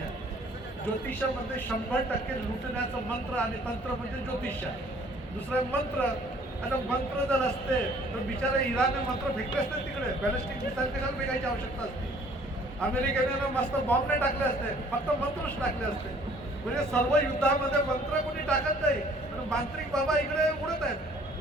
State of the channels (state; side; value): normal; both; correlation 0.57